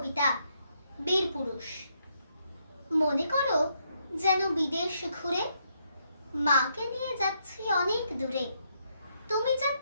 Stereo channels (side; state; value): both; inverted; correlation -0.76